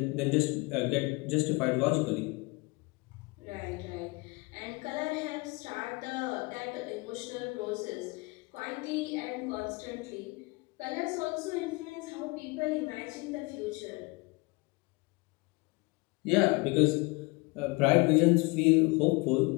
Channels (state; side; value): quieter; right; 26.4 dB